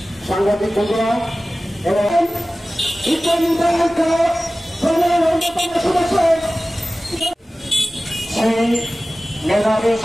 সাংবাদিক বন্ধুরা এবং সেই মেধাবী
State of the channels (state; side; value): normal; both; correlation 0.96